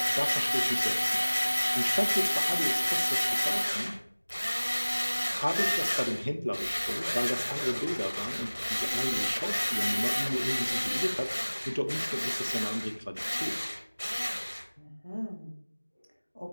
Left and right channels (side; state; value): both; inverted; correlation -1.00